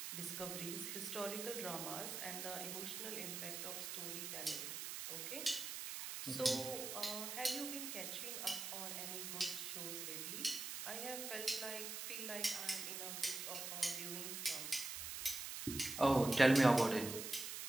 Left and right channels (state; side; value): noise; right; hiss, 5 dB below the sound